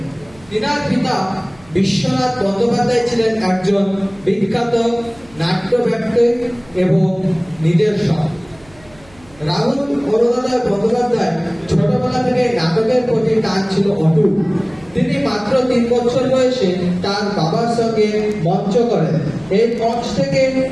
তিনার পিতা বিশ্বনাথ বন্দ্যোপাধ্যায় ছিলেন একজন বিখ্যাত নাট্যব্যক্তি এবং নির্দেশক। রাহুল অরুণোদয় বন্দ্যোপাধ্যায় ছোটবেলা থেকে নাটকের প্রতি টান ছিল অটুট। তিনি মাত্র 3 বছর বয়সে তার বাবার সঙ্গে মঞ্চ করেন। এই মঞ্চ থেকে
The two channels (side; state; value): right; noise; hum, 26 dB below the sound